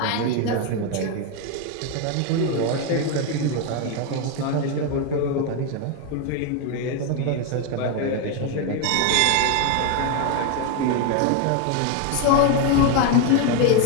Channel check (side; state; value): both; different; correlation 0.02